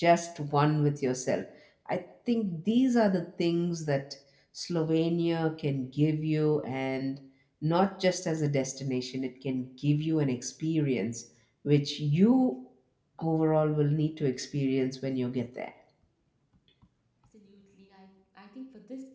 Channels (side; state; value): both; identical; correlation 1.00